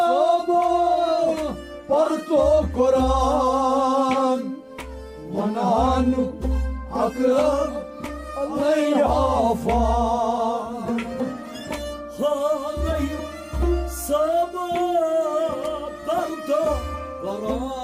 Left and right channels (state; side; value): identical; both; correlation 1.00